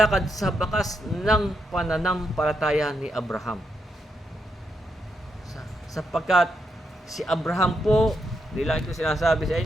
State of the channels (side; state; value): both; normal; correlation 0.81